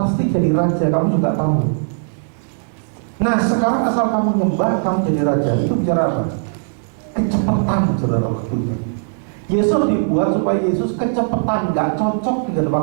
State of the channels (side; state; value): left; silent; digital silence